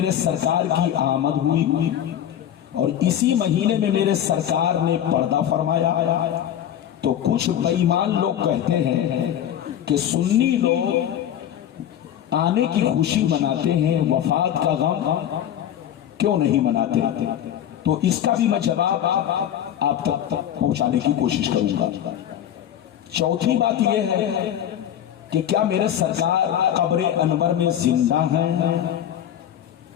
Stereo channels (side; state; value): right; quieter; 10.5 dB